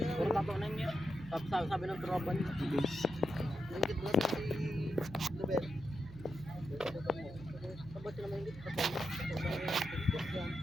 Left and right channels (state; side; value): noise; right; hum, 15 dB below the sound